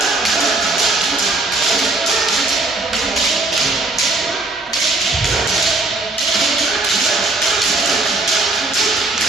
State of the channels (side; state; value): left; quieter; 3.1 dB